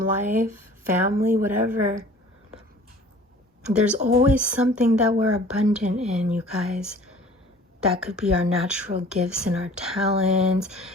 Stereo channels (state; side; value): normal; both; correlation 0.48